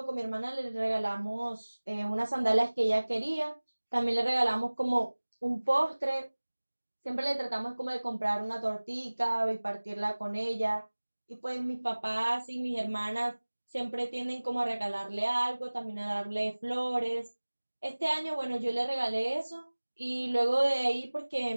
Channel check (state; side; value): inverted; both; correlation -1.00